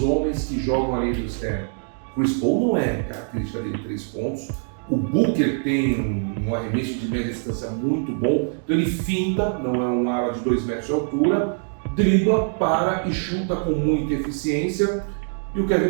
que jogam ali do externo. Chris Paul não é característica dele 3 pontos. O Booker tem um arremesso de média distância muito bom. Então ele finta, não é um ala de 2 metros de altura. dribla, para e chuta com muita eficiência. E o Kevin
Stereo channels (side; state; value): left; silent; 59 dB below the other